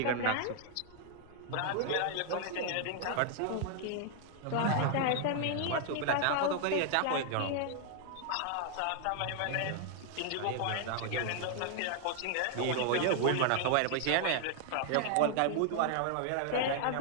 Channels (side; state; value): both; different; correlation 0.00